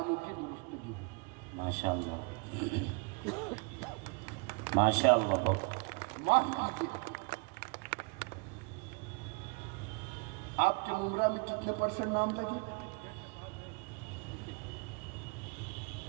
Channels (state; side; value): quieter; left; 30.8 dB